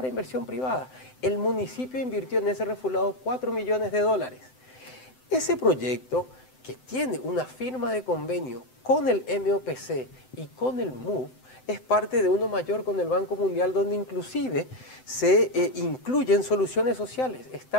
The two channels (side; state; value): right; late; 7.8 ms